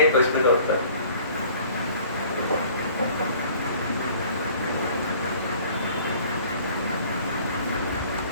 प्रश्न का उत्तर।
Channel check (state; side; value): inverted; both; correlation -0.53